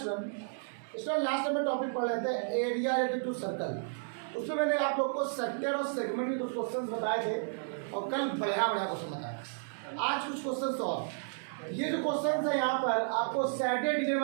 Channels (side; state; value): left; silent; digital silence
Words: Last time में टॉपिक पढ़ रहे थे एरिया रिलेटेड टू सर्कल। उसमें मैंने आप लोग को सेक्टर और सेगमेंट के कुछ क्वेश्चंस बताए थे और कल बढ़िया क्वेश्चन बताया। आज कुछ क्वेश्चंस और ये जो क्वेश्चंस है यहाँ पर आपको सैटरडे डिवीजन